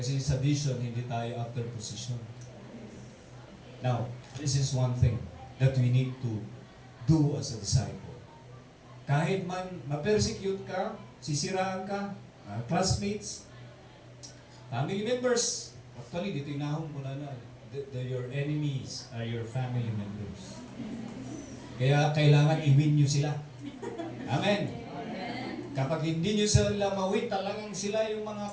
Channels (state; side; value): identical; both; correlation 1.00